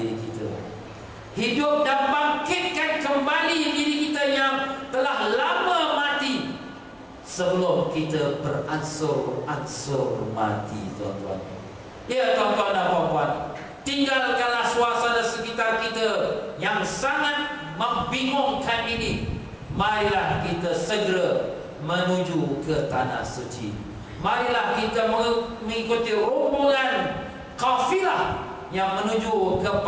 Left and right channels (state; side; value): identical; both; correlation 1.00